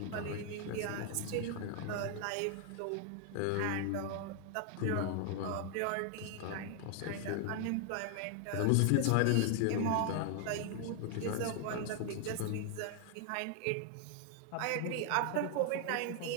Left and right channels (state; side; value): different; both; correlation 0.00